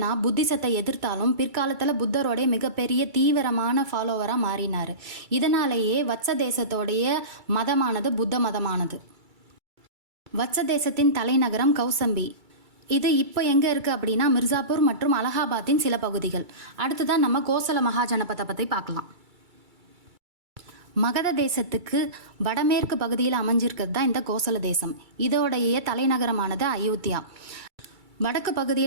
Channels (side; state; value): left; late; 2.3 ms